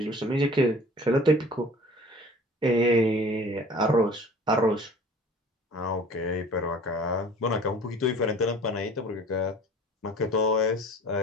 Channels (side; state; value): both; normal; correlation 0.47